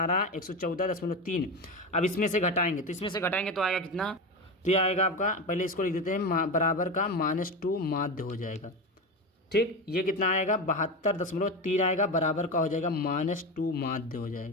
114.3। अब इसमें से घटाएंगे, तो इसमें से घटाएंगे तो आएगा कितना? तो ये आएगा आपका, पहले इसको लिख देते हैं, बराबर का -2 माध्य हो जाएगा, ठीक। ये कितना आएगा? 72.3 आएगा, बराबर का हो जाएगा -2 माध्य हो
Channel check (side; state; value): both; normal; correlation 0.20